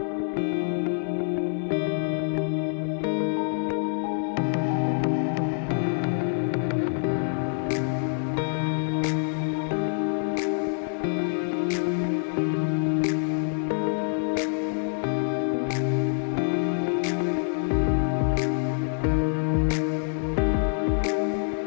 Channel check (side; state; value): right; silent; 61 dB below the other